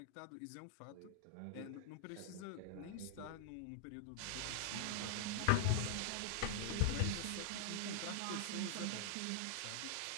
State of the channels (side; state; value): both; different; correlation 0.00